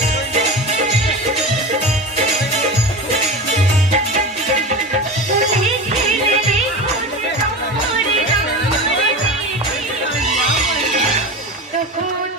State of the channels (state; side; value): normal; both; correlation 0.27